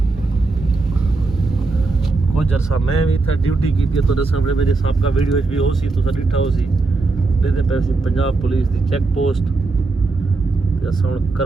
कुछ अरसा मैं भी था ड्यूटी की थी तो सामने मेरे साहब का वीडियो भी हो सी तो डिठा हो सी देते पैसे पंजाब पुलिस की चेक पोस्ट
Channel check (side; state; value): left; quieter; 3.6 dB